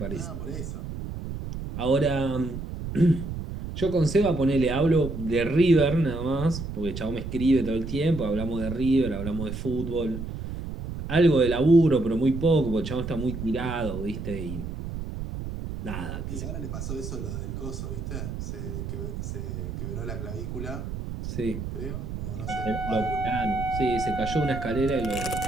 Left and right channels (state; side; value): noise; right; rumble, 7 dB below the sound